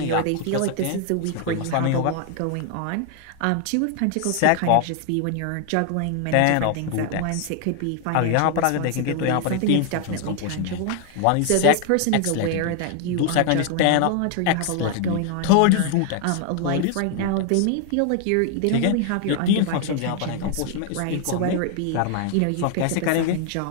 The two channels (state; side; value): different; both; correlation 0.00